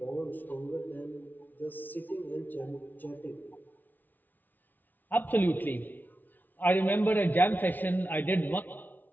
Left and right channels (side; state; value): right; late; 0.085 ms